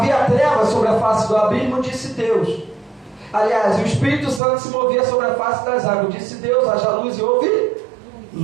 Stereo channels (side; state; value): left; drops out; at 4.4 s